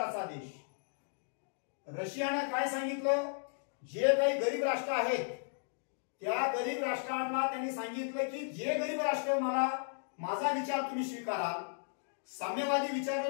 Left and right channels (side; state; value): right; silent; digital silence